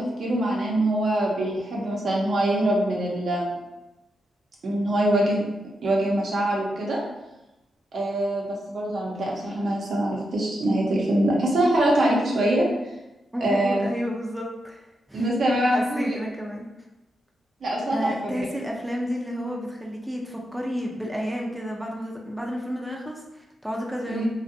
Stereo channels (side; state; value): both; normal; correlation 0.84